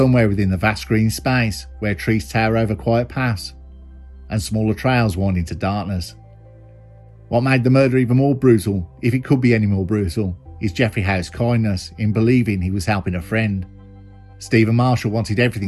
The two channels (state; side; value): identical; both; correlation 1.00